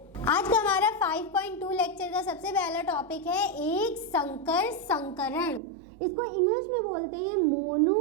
आज का हमारा 5.2 लेक्चर का सबसे पहला टॉपिक है एक संकर संकरण। इसको इंग्लिश में बोलते हैं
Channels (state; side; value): drops out; left; at 5.6 s